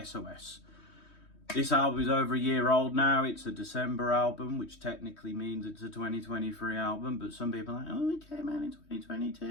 This album is over a year old now. It's a December album, which technically means it's a 2023 album, but some people are like, oh, it came out in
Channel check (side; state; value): right; late; 3.2 ms